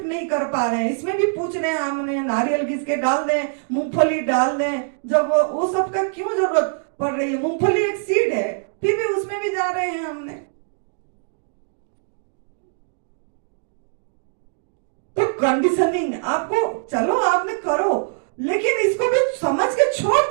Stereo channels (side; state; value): left; silent; digital silence